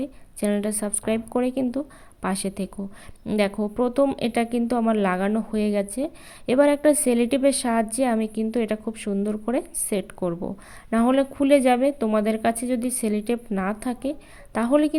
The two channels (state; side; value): identical; both; correlation 1.00